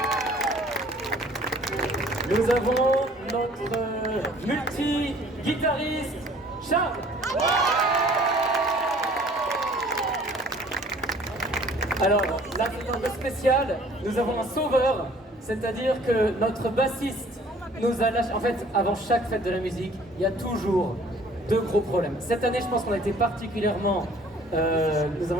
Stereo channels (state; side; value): normal; both; correlation 0.54